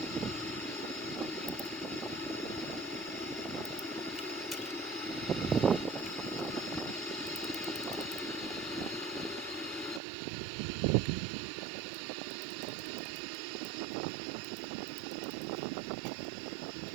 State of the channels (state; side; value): drops out; left; at 10.0 s